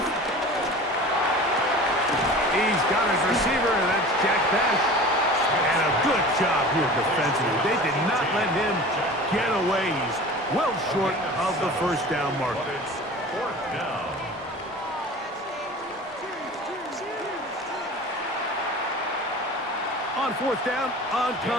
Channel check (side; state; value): both; normal; correlation 0.39